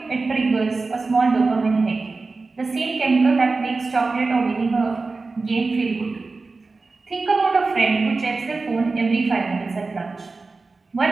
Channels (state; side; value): quieter; left; 3.8 dB